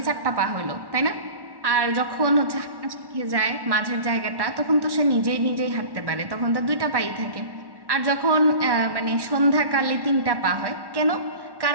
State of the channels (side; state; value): left; late; 1.1 ms